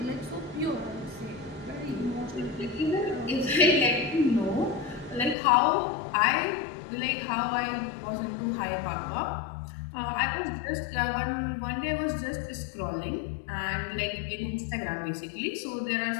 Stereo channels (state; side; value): drops out; right; at 5.4 s